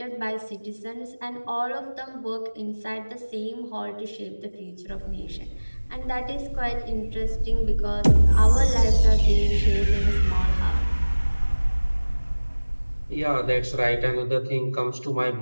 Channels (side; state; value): both; inverted; correlation -1.00